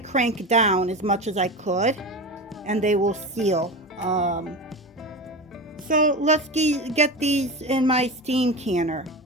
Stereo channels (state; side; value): normal; both; correlation 0.25